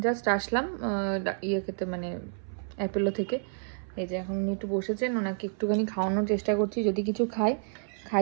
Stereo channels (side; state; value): left; silent; 58 dB below the other